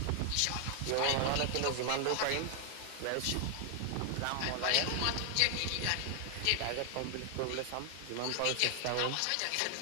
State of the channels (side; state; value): both; different; correlation 0.00